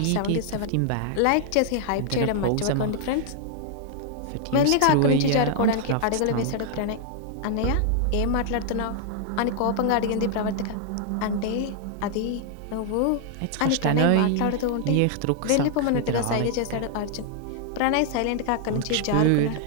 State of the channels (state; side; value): different; both; correlation 0.00